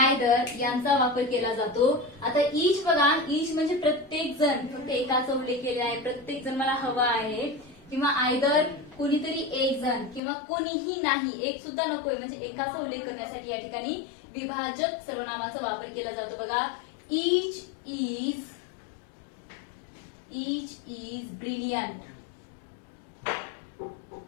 यांचा वापर केला जातो. आता ईच बघा, ईच म्हणजे प्रत्येक जण, फक्त एकाचा उल्लेख केला आहे, प्रत्येक जण मला हवा आहे. किंवा आयदर कोणीतरी एक जण किंवा कोणीही नाही, एक सुद्धा नकोय, म्हणजे एकाचा उल्लेख करण्यासाठी या ठिकाणी विभाजक सर्वनामाचा वापर केला जातो बघा. Each is brilliant.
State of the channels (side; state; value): right; drops out; at 10.2 s